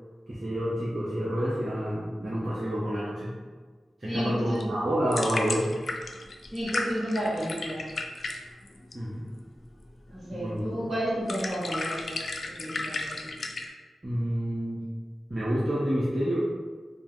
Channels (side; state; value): both; normal; correlation 0.93